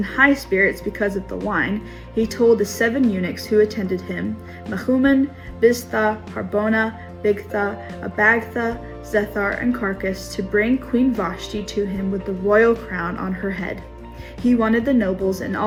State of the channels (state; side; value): identical; both; correlation 1.00